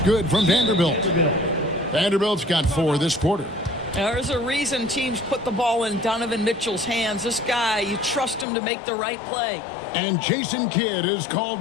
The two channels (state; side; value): drops out; right; at 8.5 s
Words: good from Vanderbilt. Vanderbilt's got 4 this quarter. There's a reason teams put the ball in Donovan Mitchell's hands. This guy, you trust him to make the right play. And Jason Kidd is called